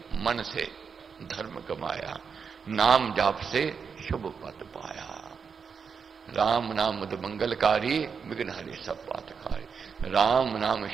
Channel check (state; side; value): quieter; left; 6.0 dB